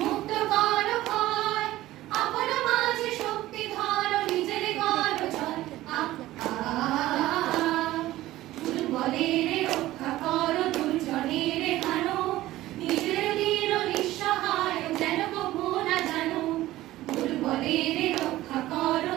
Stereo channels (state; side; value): quieter; left; 16.0 dB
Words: কর ভয় আপন মাঝে শক্তি ধর নিজের কর জয় দুর্বলের রক্ষা কর দুর্জনের হানো নিজের দীন নিঃসহায় যেন কভু না জানো দুর্বলের রক্ষা কর